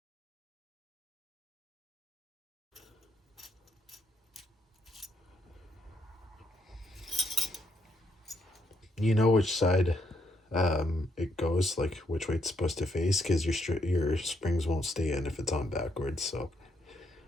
You know which side it goes, like which way it's supposed to face, because your springs won't stay in if it's on backwards. So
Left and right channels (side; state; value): both; normal; correlation 0.74